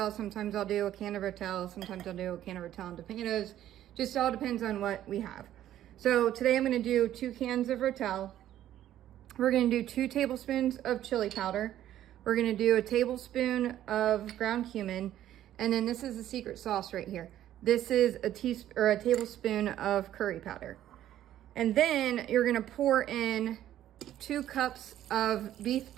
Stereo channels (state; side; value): quieter; left; 12.2 dB